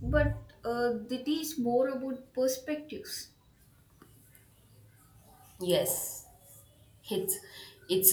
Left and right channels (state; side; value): identical; both; correlation 1.00